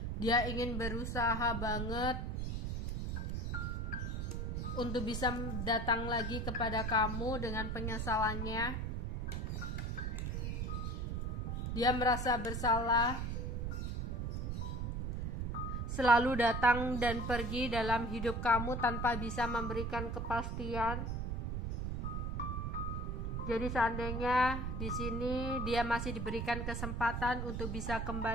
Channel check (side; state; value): right; noise; rumble, 2 dB below the sound